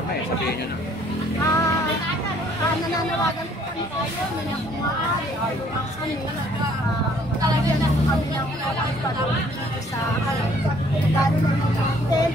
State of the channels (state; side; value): normal; both; correlation 0.61